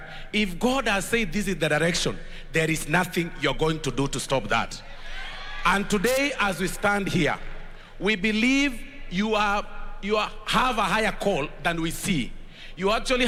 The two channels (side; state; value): both; identical; correlation 1.00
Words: if God has said this is the direction, there is nothing you're going to do to stop that. And today, as we stand here, we believe you have a higher call than we see. You actually